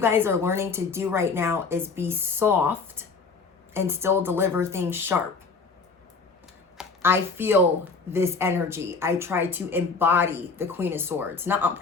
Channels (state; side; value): quieter; right; 4.6 dB